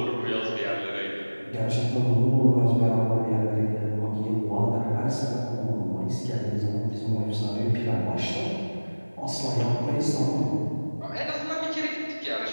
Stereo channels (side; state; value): both; inverted; correlation -1.00